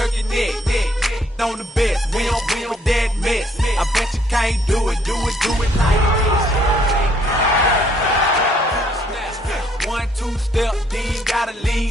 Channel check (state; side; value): normal; both; correlation 0.66